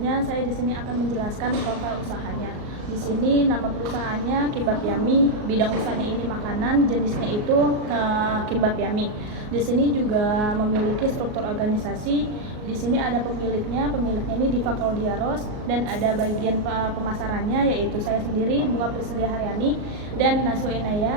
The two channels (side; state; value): left; late; 38 ms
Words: saya di sini akan menjelaskan profil usahanya. Di sini nama perusahaannya Kimbap Yummy, bidang usahanya ini makanan, jenisnya itu Kimbap Yummy. Di sini juga memiliki struktur organisasi. Di sini ada pemiliknya ini Diva Claudiaros, dan ada bagian pemasarannya yaitu saya sendiri Bunga Priscilia Haryani dan Najwa